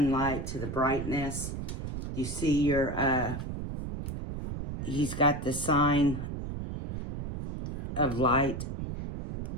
to the brightness. You see your, he's got the sign of light.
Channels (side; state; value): right; noise; rumble, 6 dB below the sound